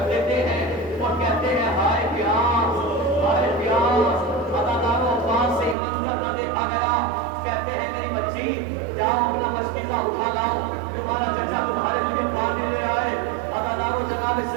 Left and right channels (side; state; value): left; drops out; at 5.8 s